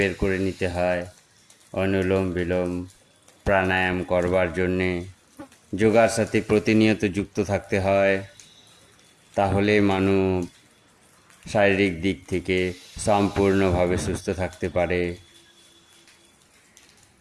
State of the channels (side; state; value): both; identical; correlation 1.00